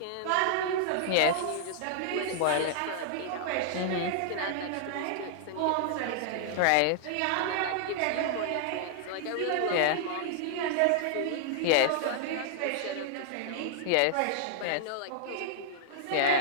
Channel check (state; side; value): different; both; correlation -0.01